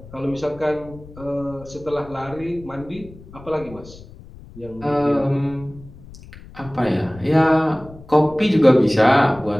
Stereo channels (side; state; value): left; noise; rumble, 19 dB below the sound